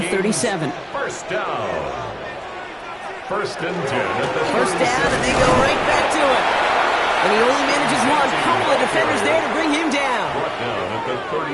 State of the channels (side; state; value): both; identical; correlation 1.00